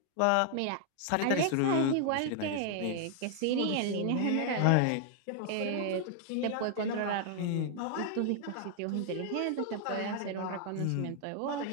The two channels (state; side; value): different; both; correlation 0.00